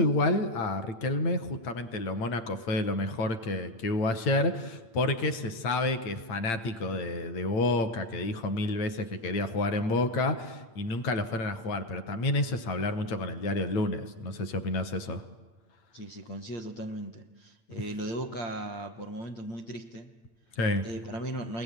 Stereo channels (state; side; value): late; right; 8.8 ms